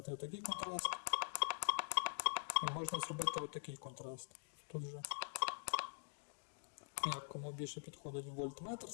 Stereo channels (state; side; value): silent; right; digital silence